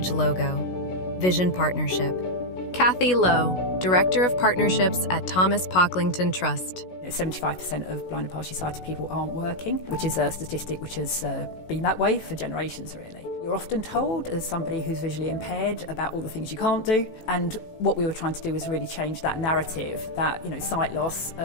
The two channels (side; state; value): right; late; 16 ms